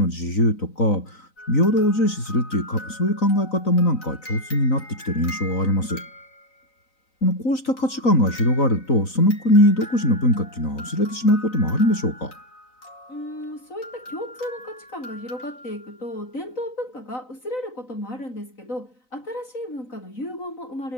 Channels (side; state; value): right; late; 3.9 ms